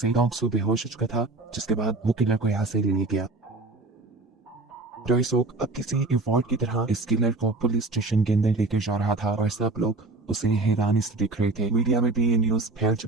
डोंगसो बेहोश हो चुका था, जिसके बाद वो किलर को यहाँ से ले गया। टाइसो अब किसी इवॉल्ट की तरह इस किलर को पुलिस स्टेशन के अंदर लेकर जा रहा था और सब लोग उसे हैरानी से देख रहे थे। मीडिया में भी ये न्यूज फैल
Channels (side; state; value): left; quieter; 3.2 dB